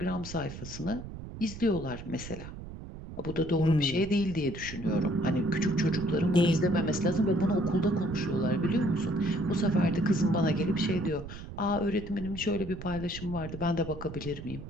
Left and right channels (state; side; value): noise; right; rumble, 11 dB below the sound